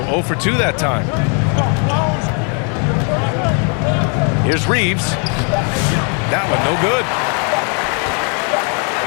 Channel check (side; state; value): right; quieter; 39.4 dB